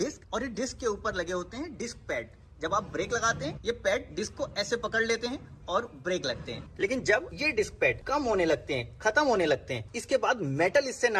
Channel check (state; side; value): identical; both; correlation 1.00